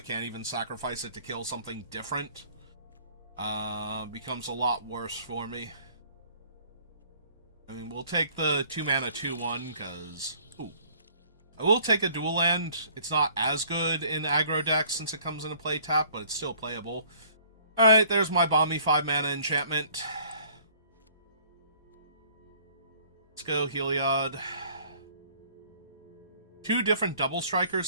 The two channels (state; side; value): inverted; both; correlation -0.56